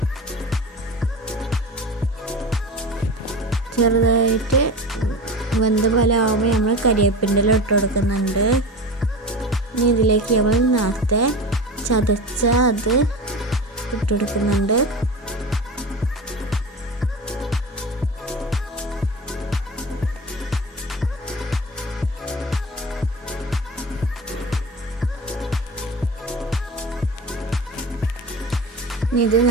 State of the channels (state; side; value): normal; both; correlation 0.30